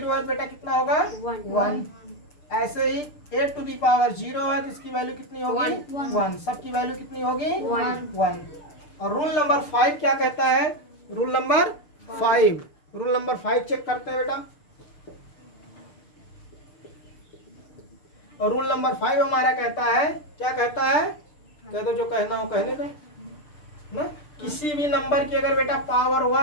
है बेटा, कितना होगा, 1। ऐसे ही 8 टू दी पावर 0 है तो इसकी वैल्यू कितनी होगी, 1। सबकी वैल्यू कितनी होगी, 1। और रूल नंबर 5 क्या कहता है, rule number 5, rule number 5 check करते हैं बेटा। और रूल नंबर 5 हमारा कहता है, क्या कहता है, कह दो जो कहना हो कहने दो ना। किसी भी नंबर की अगर बेटा पावर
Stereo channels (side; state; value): right; late; 6.7 ms